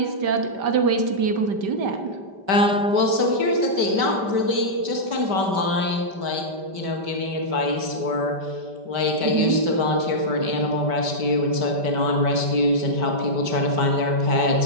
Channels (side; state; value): left; late; 5.1 ms